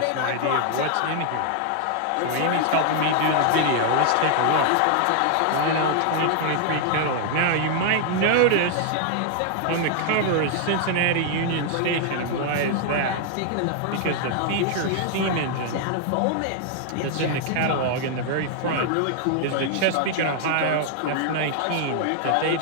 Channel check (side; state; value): both; different; correlation 0.00